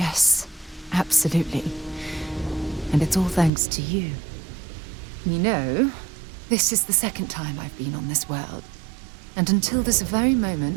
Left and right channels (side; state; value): left; drops out; at 3.5 s